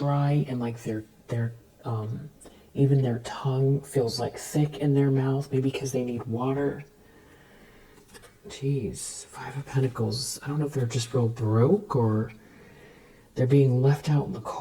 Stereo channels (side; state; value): both; identical; correlation 1.00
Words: and like their even their tongue feels like thick in their mouth, maybe because they need water. Jeez, Five of Pentacles. I don't know if they're just real broke, or they're being left out in the